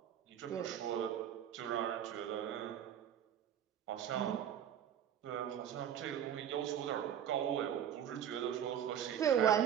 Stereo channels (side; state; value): left; quieter; 9.6 dB